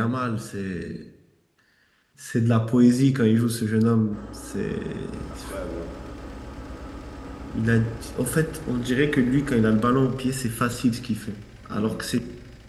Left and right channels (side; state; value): both; identical; correlation 1.00